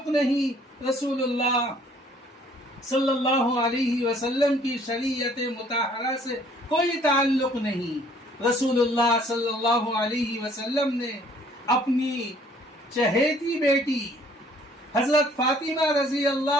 نہیں، رسول اللہ صلی اللہ علیہ وسلم کی شریعت مطہرہ سے کوئی تعلق نہیں۔ رسول اللہ صلی اللہ علیہ وسلم نے اپنی چہیتی بیٹی حضرت فاطمہ رضی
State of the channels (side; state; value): both; normal; correlation 0.59